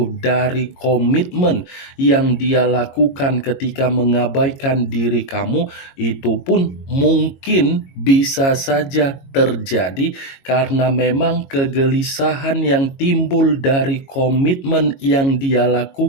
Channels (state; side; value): late; right; 22 ms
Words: dari komitmen yang dia lakukan ketika mengabaikan diri kamu, itu pun mungkin bisa saja terjadi karena memang kegelisahan yang timbul dari komitmen yang dia